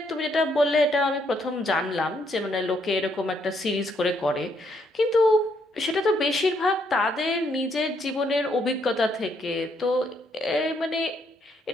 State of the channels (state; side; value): normal; both; correlation 0.73